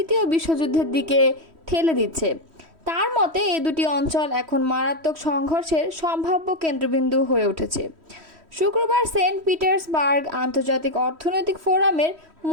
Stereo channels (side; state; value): left; late; 3.1 ms